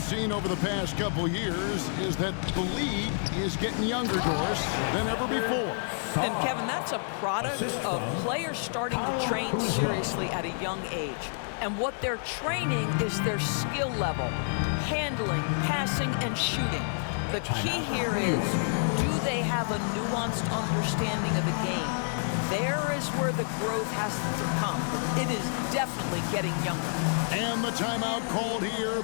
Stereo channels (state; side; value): silent; right; 59 dB below the other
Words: over the past couple years is that the league is getting younger, Doris, than ever before. And Kevin, that's a product of players starting to train seriously at a young age. And what they're training is their skill level, handling, passing, and shooting. The key here is, do they have a nuanced understanding of the game? There is where the growth has to come. It is definitely getting younger. And the timeout called here